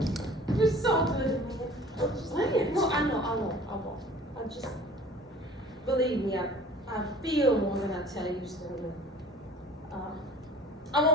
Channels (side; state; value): both; normal; correlation 0.46